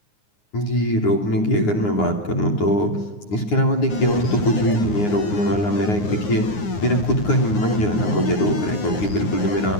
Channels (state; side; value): late; right; 9.6 ms